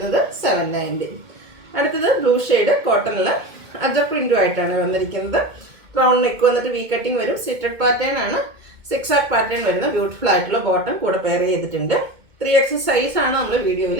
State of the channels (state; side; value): late; left; 2.2 ms